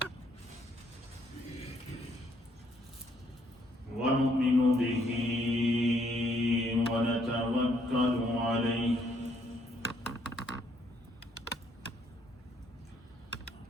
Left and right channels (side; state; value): both; normal; correlation 0.69